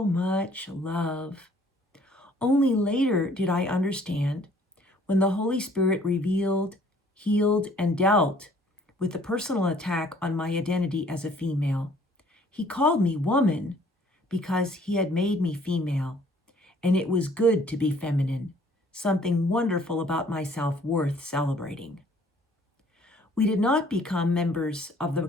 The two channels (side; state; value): both; normal; correlation 0.58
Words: much love. Only later did I understand, when the Holy Spirit revealed, healed, and dealt with the personal attack on my identity as a female. He called me woman because he had made me female, and it was good to be feminine, something wonderful about myself worth celebrating. We did not become members of